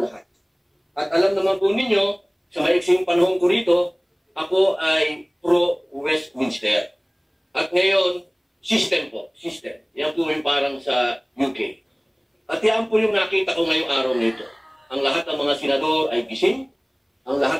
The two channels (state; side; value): identical; both; correlation 1.00